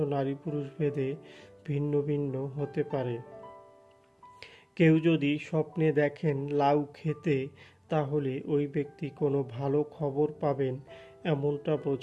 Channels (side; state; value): both; identical; correlation 1.00